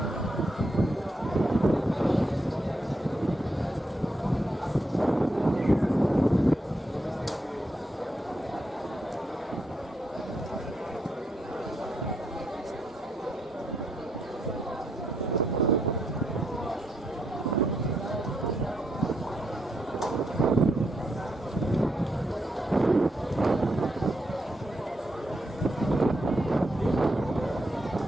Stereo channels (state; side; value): normal; both; correlation 0.79